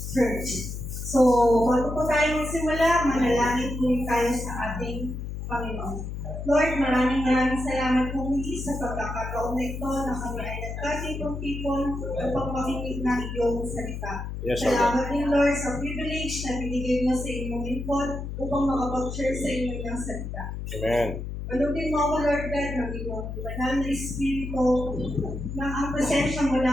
church. So, bago po tayo magsimula, manalangin po tayo sa ating Panginoon. Lord, maraming salamat po muli sa pagkakataon na ito na kami ay nagkasipon-tipon upang makinig ng iyong salita. Yes, Salamat din, Lord, sa privilege na binigay mo sa inyong lingkod upang makapag-share sa inyong salita. Amen. Malutin mo ako, Lord God, ng iyong banal na Espiritu na ang presensya mo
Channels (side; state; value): left; noise; hum, 6 dB below the sound